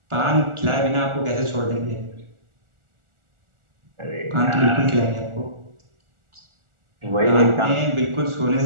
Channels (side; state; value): left; late; 1.4 ms